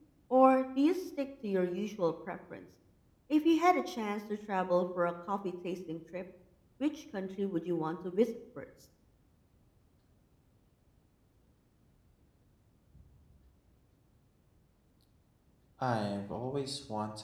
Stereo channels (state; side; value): identical; both; correlation 1.00